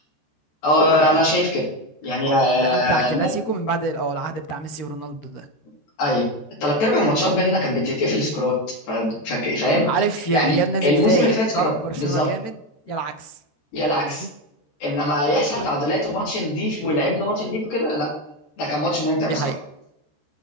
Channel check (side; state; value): right; late; 13 ms